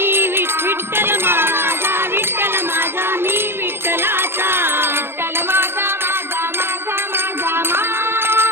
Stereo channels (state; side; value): late; left; 0.11 ms